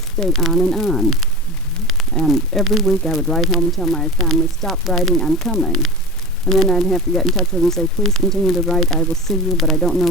stayed on and on. And every week I would write home and tell my family, stop writing, I'm coming. And then I'd have to get in touch with them and say, please continue to write, I will see you, but I don't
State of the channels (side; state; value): left; noise; rumble, 22 dB below the sound